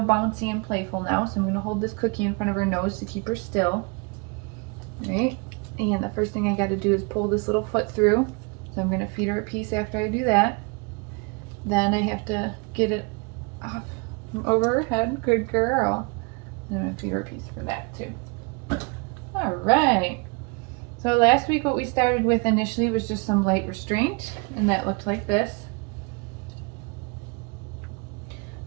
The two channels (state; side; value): quieter; left; 31.1 dB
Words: bouncy and playful now, so I'm going to hold this cookie in front of her nose to keep her still. All right, and the first thing I got to do is pull this little foot through. So I'm going to feed her a piece after I do that. Then I have to get it off from over her head. Good girl. I'm going to feed her a piece for that too. All right. So last week what we started with initially was just some light restraint, and that looked like this.